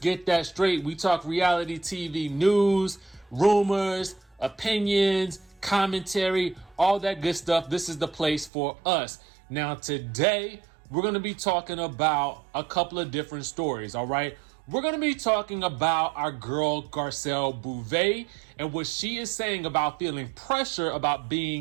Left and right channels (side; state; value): left; drops out; at 8.5 s